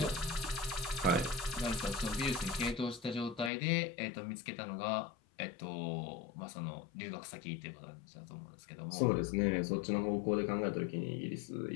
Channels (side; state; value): right; drops out; at 3.5 s